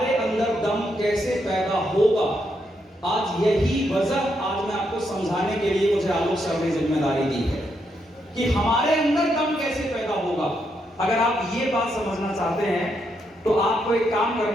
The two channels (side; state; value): both; normal; correlation 0.79